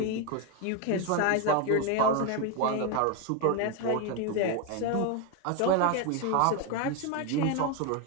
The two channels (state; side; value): different; both; correlation 0.02